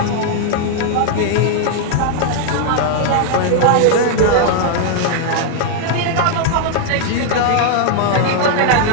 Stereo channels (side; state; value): both; different; correlation 0.00